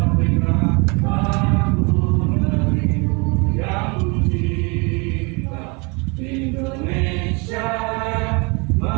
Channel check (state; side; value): quieter; left; 30.2 dB